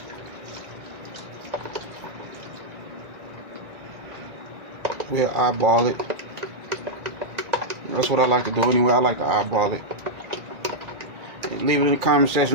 We'll eyeball it That's what I like to do anyway. I like to eyeball it. And leave it in the comment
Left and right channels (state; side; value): late; left; 2.3 ms